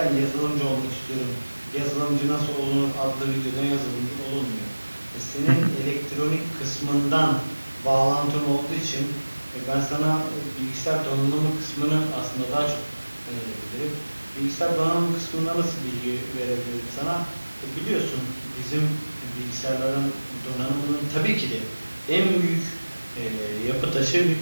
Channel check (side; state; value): both; inverted; correlation -1.00